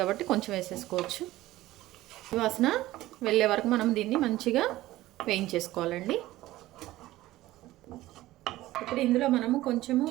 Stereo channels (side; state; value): left; quieter; 16.5 dB